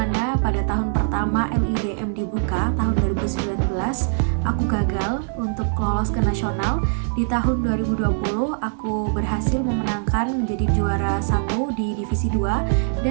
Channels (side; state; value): left; silent; digital silence